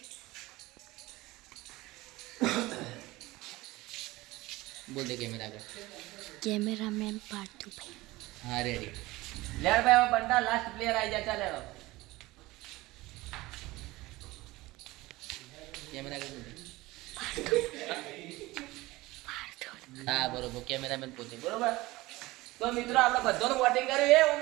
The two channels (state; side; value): quieter; left; 19.8 dB